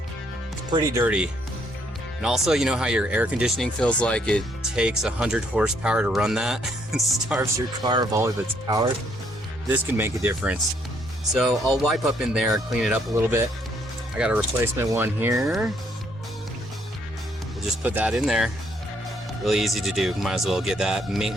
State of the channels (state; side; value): normal; both; correlation 0.69